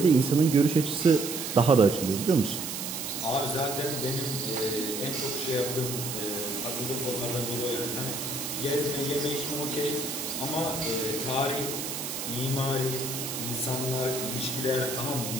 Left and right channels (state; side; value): noise; right; hiss, 5 dB below the sound